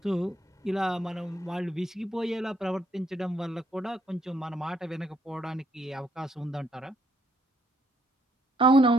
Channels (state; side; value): normal; both; correlation 0.71